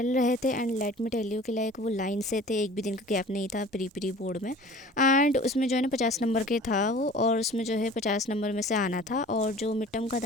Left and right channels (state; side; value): normal; both; correlation 0.44